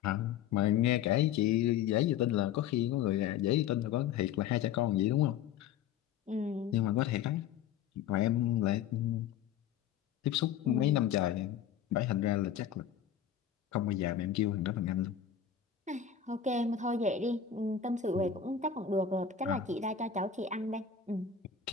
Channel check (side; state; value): right; quieter; 8.7 dB